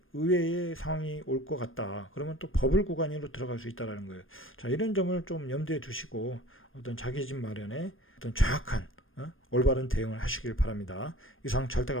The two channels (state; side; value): late; right; 0.59 ms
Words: 의외의 상황이 올 것 같다. 그러면 또 버블 구간으로 들어갈 수 있다라는 거예요. 자, 이런 점을 좀 염두에 두시고 어떤 자기 집 마련에 어떤 정확한 올바른 대응을 하시길 바랍니다. 이상